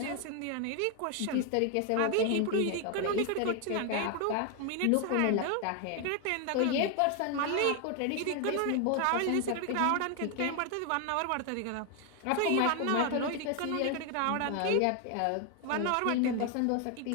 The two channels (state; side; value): different; both; correlation 0.01